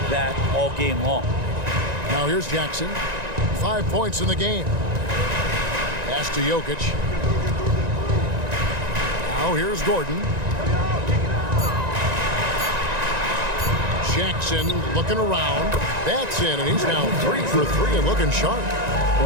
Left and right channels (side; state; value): left; late; 1.9 ms